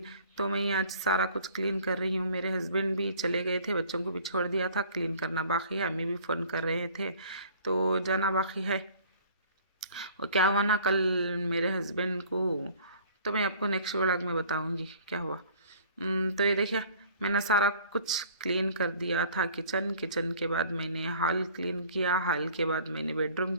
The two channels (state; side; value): inverted; both; correlation -0.51